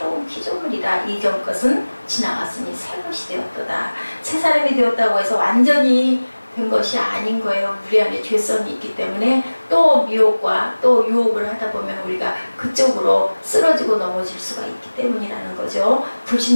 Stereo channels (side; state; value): both; inverted; correlation -1.00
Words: 피조물이라 이전 것은 지나갔으니 새 것이 되었도다. 새사람이 되었다고 해서 완전히 된 것이 아닌 거예요. 우리 안에 죄성이 있기 때문에 또 미혹과 또 유혹을 하다 보면 우리가 그쪽으로 쓰러지고 넘어질 수가 있기 때문이라는 거죠.